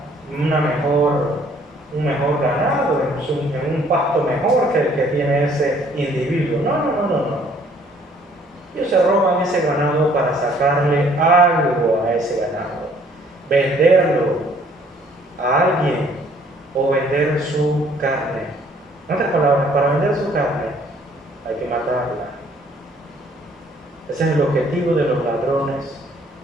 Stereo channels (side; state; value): both; normal; correlation 0.60